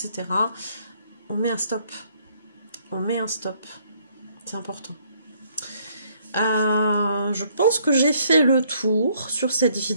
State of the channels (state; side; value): inverted; both; correlation -0.67